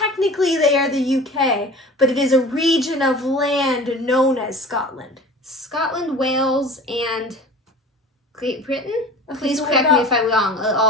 they are the UK, but it is a region of land known as Scotland. Scotland, Wales, and Great Britain? Okay, Please so correct me if I'm wrong.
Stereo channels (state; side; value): normal; both; correlation 0.40